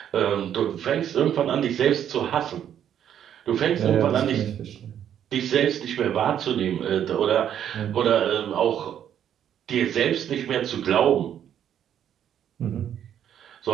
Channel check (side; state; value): left; quieter; 9.8 dB